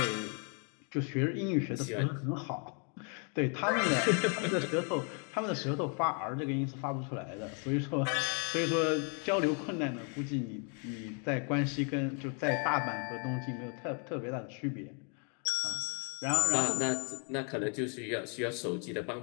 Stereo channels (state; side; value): quieter; right; 40.0 dB